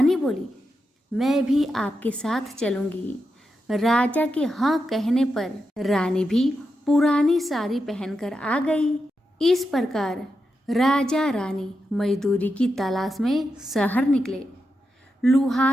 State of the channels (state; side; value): normal; both; correlation 0.87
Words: बोली, मैं भी आपके साथ चलूंगी। राजा के हाँ कहने पर रानी भी पुरानी साड़ी पहनकर आ गई। इस प्रकार राजा रानी मजदूरी की तलाश में शहर निकले।